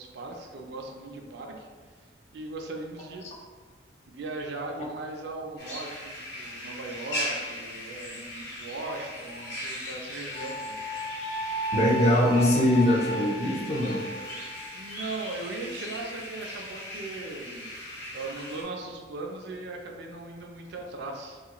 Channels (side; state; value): both; normal; correlation 0.50